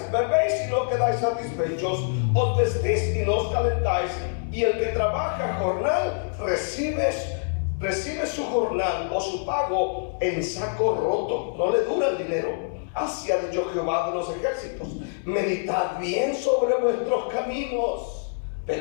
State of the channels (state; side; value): silent; right; digital silence